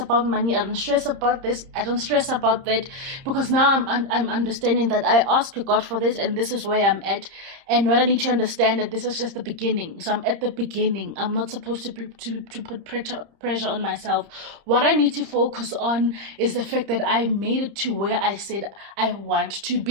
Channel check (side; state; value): left; late; 30 ms